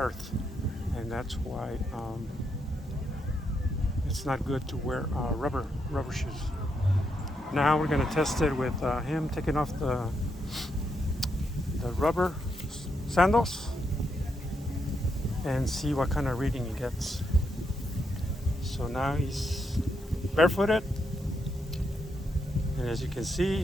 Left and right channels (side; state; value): both; normal; correlation 0.80